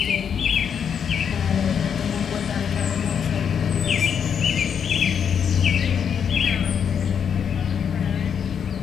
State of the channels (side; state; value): right; quieter; 7.5 dB